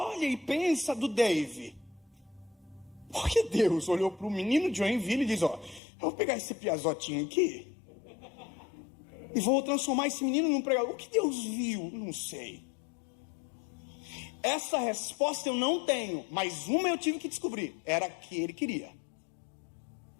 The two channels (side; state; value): right; drops out; at 5.8 s